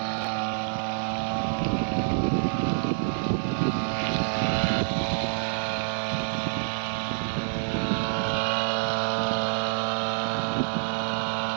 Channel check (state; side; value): silent; left; 60 dB below the other